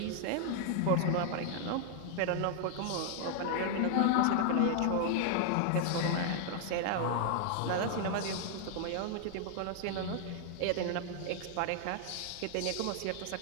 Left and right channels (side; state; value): both; different; correlation 0.00